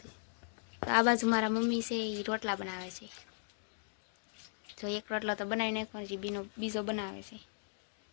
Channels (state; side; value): silent; right; digital silence